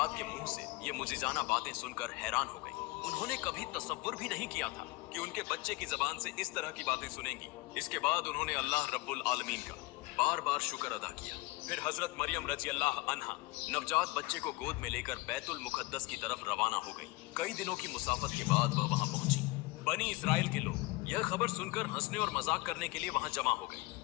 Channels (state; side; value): quieter; right; 22.0 dB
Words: के मुंह से ये मुजिजाना बातें सुनकर हैरान हो गई। उन्होंने कभी तसव्वुर भी नहीं किया था कि उनके बच्चे की जबान से इस तरह की बातें सुनेंगी। इसके बाद उन्होंने अल्लाह रब्बुल आलमीन का बार बार शुक्र अदा किया। फिर हजरत मरियम रजी अल्लाह अन्हा नवजात बच्चे को गोद में लेकर बैतुल मुकद्दस की तरफ रवाना हो गई। कई दिनों की मुसाफत के बाद वह वहां पहुंची। बनी इसराइल के लोग यह खबर सुनकर हंसने और मजाक करने के लिए वहां जमा हो गए।